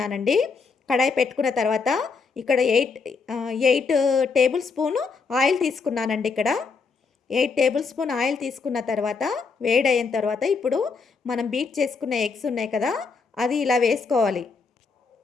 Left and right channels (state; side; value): quieter; right; 4.9 dB